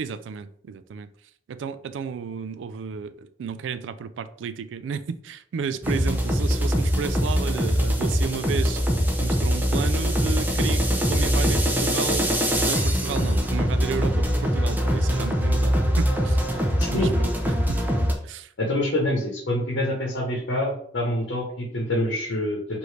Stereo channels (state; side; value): normal; both; correlation 0.73